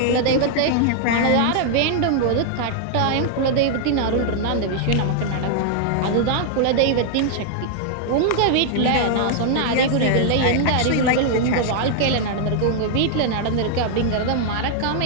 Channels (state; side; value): different; both; correlation 0.00